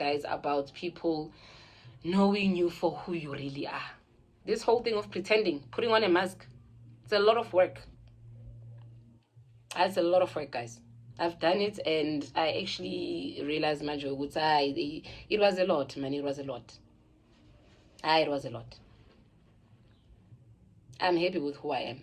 about people knowing you for who you really are. This whole thing of pretending, putting on a mask, it's a lot of work. It's a lot of work, guys. I've done it, and I actually realized, Manjo, it was a lot, man. It was a lot. It was a lot. I'm happy with who I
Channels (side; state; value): both; identical; correlation 1.00